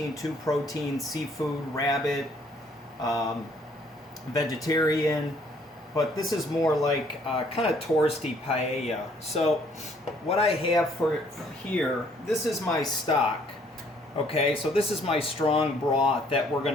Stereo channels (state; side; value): normal; both; correlation 0.62